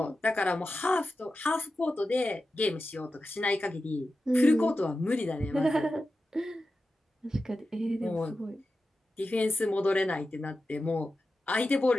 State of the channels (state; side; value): normal; both; correlation 0.92